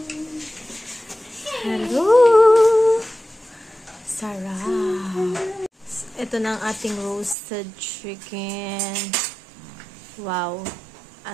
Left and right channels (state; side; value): drops out; left; at 7.4 s